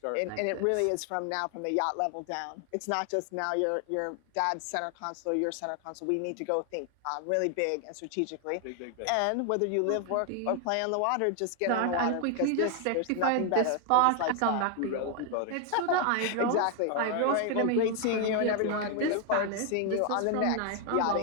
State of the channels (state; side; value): different; both; correlation 0.00